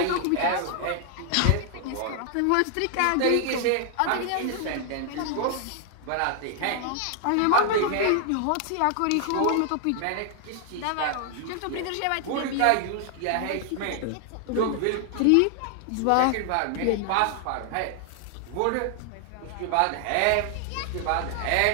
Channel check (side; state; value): both; different; correlation 0.00